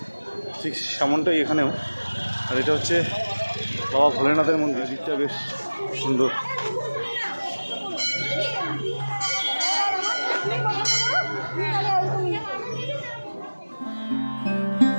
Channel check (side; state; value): both; inverted; correlation -1.00